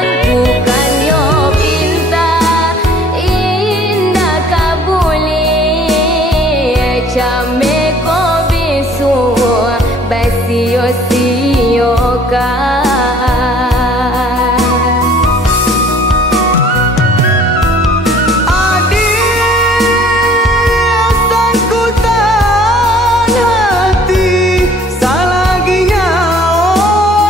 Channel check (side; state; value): both; normal; correlation 0.54